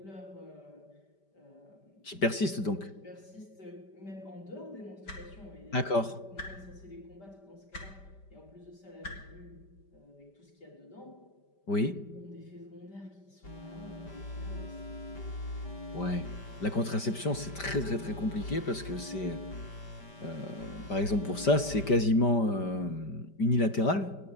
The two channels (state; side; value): late; right; 5.1 ms